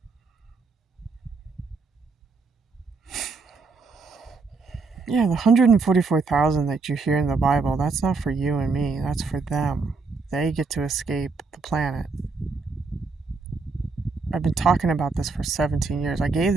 Yeah, the 144,000 that you hear in the Bible, that's not for you and me. That's for them. They get to escape the planet. I've been talking about this for 17 years. I gave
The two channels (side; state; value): left; quieter; 4.3 dB